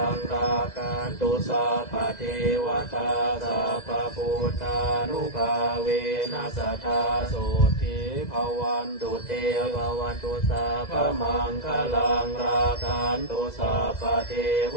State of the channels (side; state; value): right; late; 2.0 ms